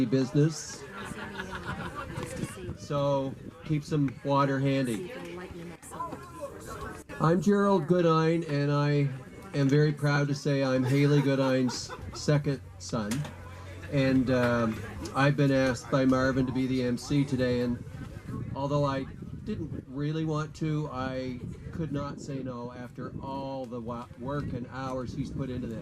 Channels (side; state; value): both; identical; correlation 1.00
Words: business. So keep some water handy. I'm Gerald Goodine, and I am very proud to say I'm Haley Goodine's second son. And I've been asked by Marvin to be the MC today, and although I didn't really want to, I could not say no after all the work and hours he's put into